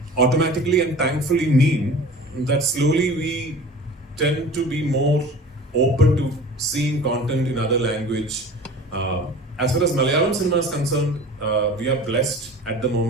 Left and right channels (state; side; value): normal; both; correlation 0.40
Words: automatically and thankfully mean that slowly we tend to be more open to seeing content in other language. As far as Malayalam cinema is concerned, we are blessed at the